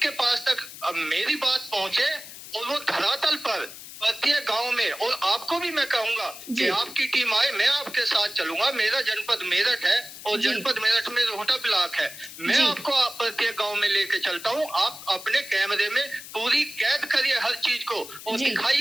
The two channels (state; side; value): noise; left; hiss, 14 dB below the sound